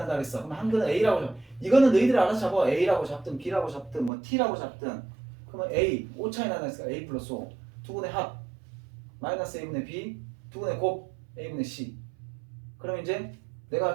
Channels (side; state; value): left; drops out; at 4.1 s